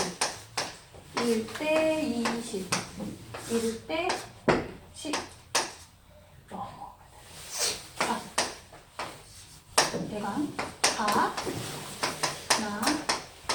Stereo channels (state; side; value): identical; both; correlation 1.00